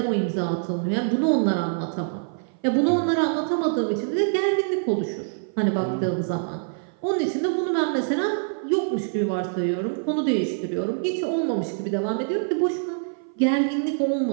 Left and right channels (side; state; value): left; silent; 56 dB below the other